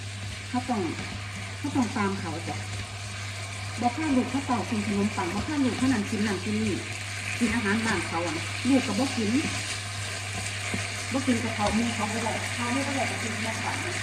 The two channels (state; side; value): identical; both; correlation 1.00